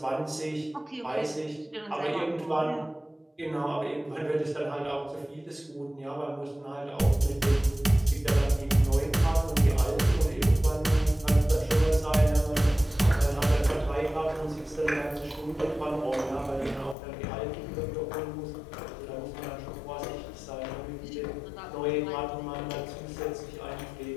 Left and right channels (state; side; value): drops out; right; at 16.9 s